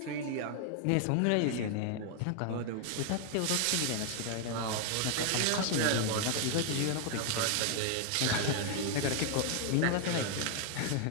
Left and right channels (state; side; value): different; both; correlation 0.00